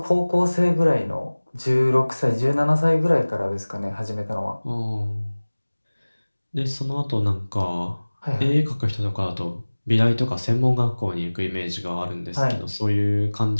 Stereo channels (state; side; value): inverted; both; correlation -1.00